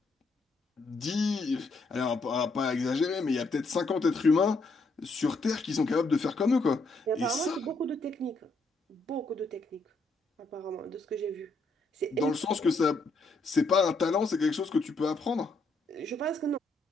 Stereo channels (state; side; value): quieter; right; 3.1 dB